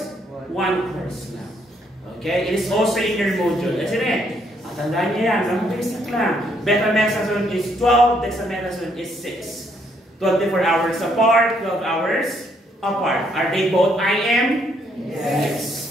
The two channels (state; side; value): normal; both; correlation 0.71